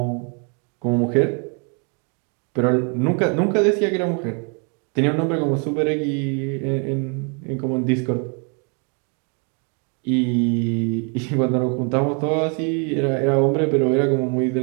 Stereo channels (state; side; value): quieter; left; 37.5 dB